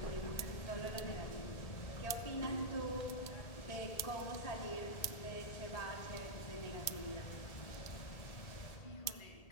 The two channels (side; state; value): right; late; 1.8 ms